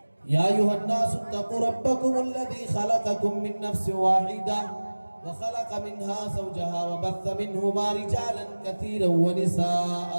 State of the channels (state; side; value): inverted; both; correlation -1.00